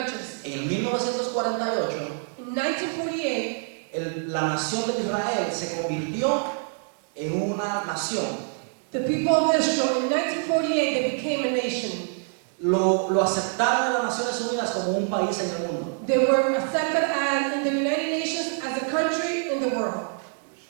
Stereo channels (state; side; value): silent; left; 57 dB below the other